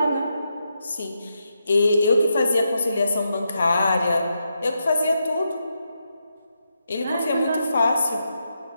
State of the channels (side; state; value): both; inverted; correlation -0.84